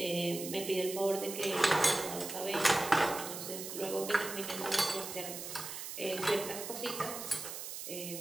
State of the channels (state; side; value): noise; right; hiss, 8 dB below the sound